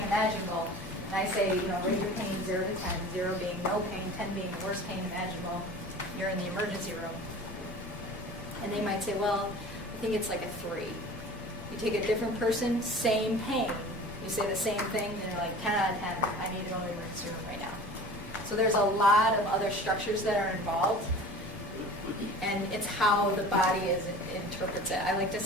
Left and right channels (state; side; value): normal; both; correlation 0.40